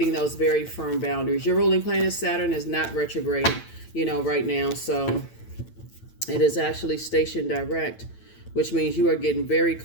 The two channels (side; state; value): right; late; 9.0 ms